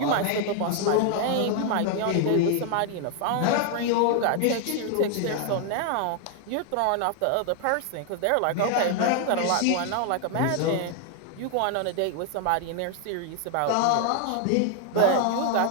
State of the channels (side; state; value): both; different; correlation 0.00